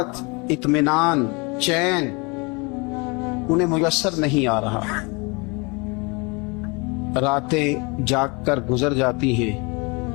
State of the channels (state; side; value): quieter; right; 29.2 dB